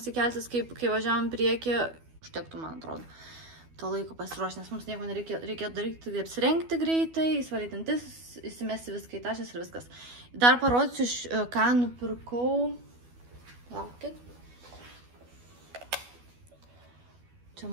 keltis, kai važiavam priekį, užtektų, man atrodo. To laiko pasiruošti, nes mums nieko nereikėjo daryti, tai apsirengti greitai, įsivalyti dantis, įsimesti viską į tašės ir viskas. Dar parodysiu, ką nupirkau. Laukit. Čia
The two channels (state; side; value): late; left; 12 ms